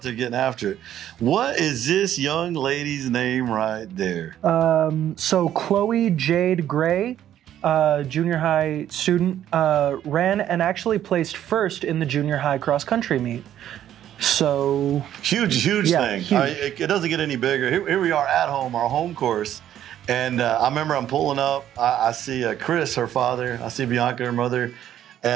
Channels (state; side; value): quieter; left; 11.2 dB